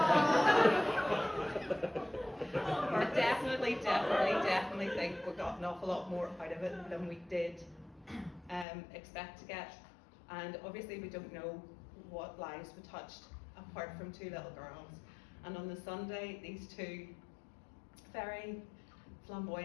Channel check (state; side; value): drops out; right; at 8.7 s